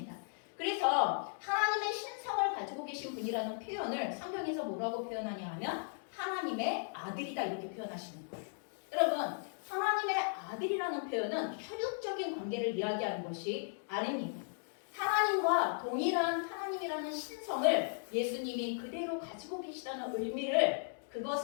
그래서 하나님의 신성을 가지고 계신 분이라는 표현을 성경에서 뭐라고 표현하냐 하면 하나님의 아들이다 이렇게 표현하시는 거예요. 여러분, 하나님의 아들이라는 표현은 혈육적인 관계를 이야기하는 것이 아닙니다. 하나님과 동일한 하나님이라는 신성을 예수님이 그대로 가지고 계시다는 의미를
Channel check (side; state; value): right; silent; digital silence